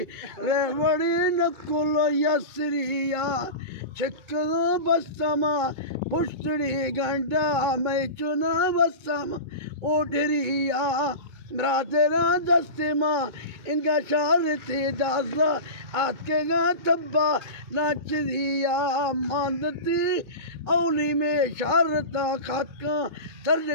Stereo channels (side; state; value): left; late; 2.2 ms